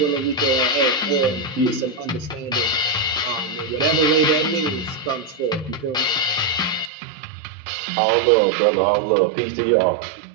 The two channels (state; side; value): drops out; left; at 6.9 s